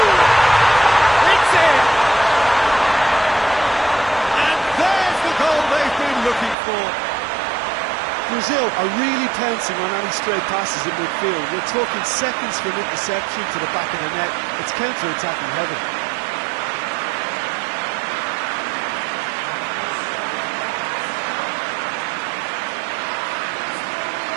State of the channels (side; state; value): left; drops out; at 6.6 s